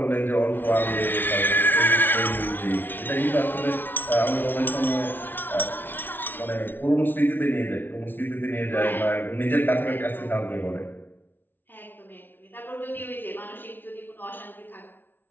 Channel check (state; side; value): late; right; 0.095 ms